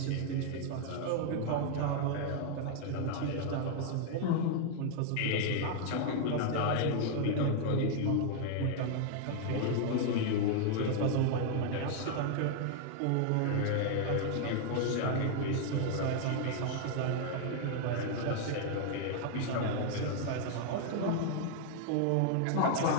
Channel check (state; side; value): different; both; correlation 0.00